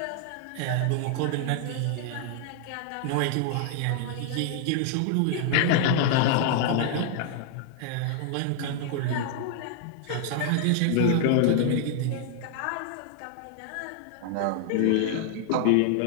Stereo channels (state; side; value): different; both; correlation 0.00